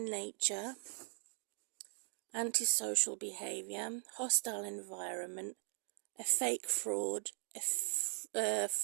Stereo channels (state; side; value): silent; left; 51 dB below the other